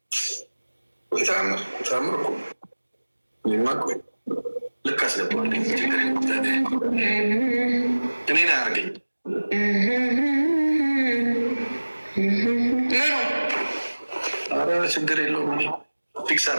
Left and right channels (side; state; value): both; inverted; correlation -1.00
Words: ታምር እኮ እኔማ ቆይ ልክ አስገባዋለሁ። እኔን አያርገኝ ምኑ ኧረ ችግር የለውም። እኔ ፊክስ